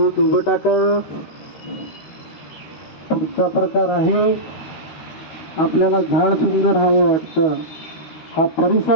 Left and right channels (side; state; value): right; late; 13 ms